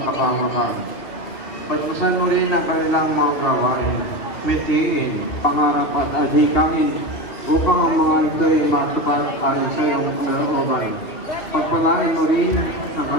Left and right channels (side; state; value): right; late; 2.7 ms